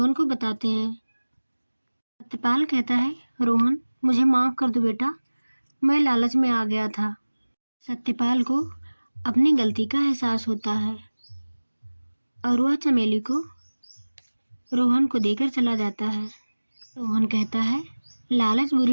को बताते हैं। सत्यपाल कहता है, रोहन, मुझे माफ़ कर दो बेटा, मैं लालच में आ गया था। सत्यपाल को अपनी गलती का एहसास होता है और वह चमेली को रोहन को देकर चला जाता है। रोहन कहता है, लालच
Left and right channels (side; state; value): both; inverted; correlation -1.00